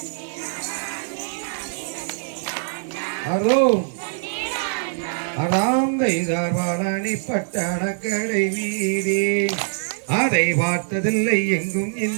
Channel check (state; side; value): silent; left; 61 dB below the other